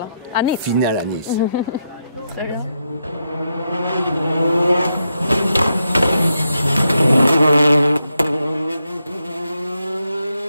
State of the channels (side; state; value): both; inverted; correlation -0.83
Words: à Nice. Finale à Nice. Très bien.